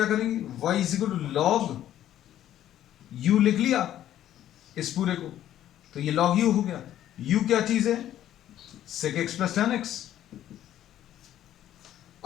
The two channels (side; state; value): right; quieter; 12.0 dB